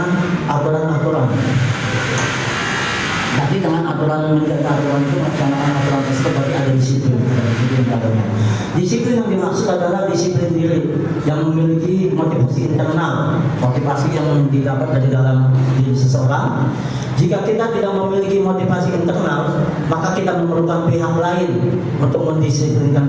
aturan-aturan. Tapi dengan aturan menjaga aturan itu, melaksanakan aturan tersebut berarti ada disiplin. Disiplin yang dimaksud adalah disiplin diri yang memiliki motivasi internal, motivasi yang didapat dari dalam diri seseorang. Jika kita tidak memiliki motivasi internal, maka kita memerlukan pihak lain untuk mendisiplinkan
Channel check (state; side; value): identical; both; correlation 1.00